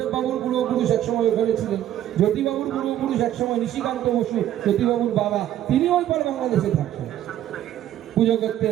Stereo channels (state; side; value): quieter; left; 12.1 dB